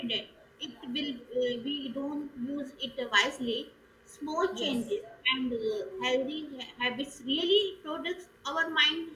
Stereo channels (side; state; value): both; identical; correlation 1.00